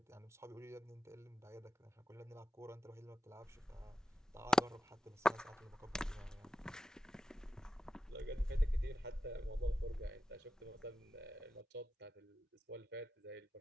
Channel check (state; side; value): normal; both; correlation 0.91